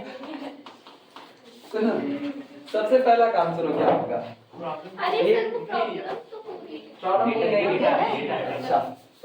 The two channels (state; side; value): identical; both; correlation 1.00